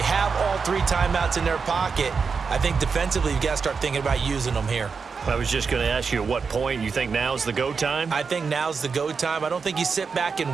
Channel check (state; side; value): quieter; left; 5.3 dB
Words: have all 3 timeouts in their pocket. I think defensively, you've got to start thinking about using them here. I was just going to ask you at what point you think now's the go time? I think now's the go time. I don't think you sit back